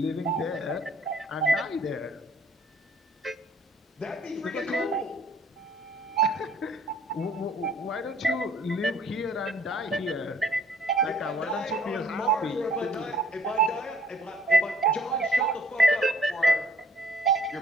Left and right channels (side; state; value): both; normal; correlation 0.58